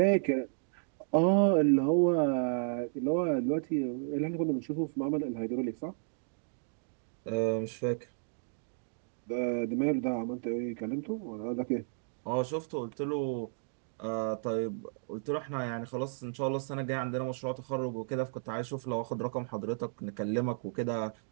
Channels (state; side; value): silent; left; digital silence